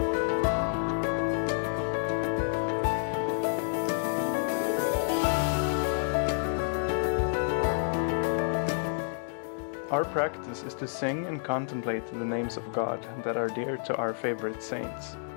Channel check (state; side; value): silent; right; digital silence